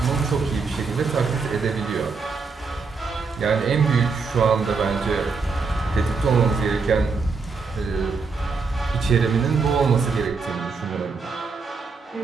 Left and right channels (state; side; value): quieter; left; 4.7 dB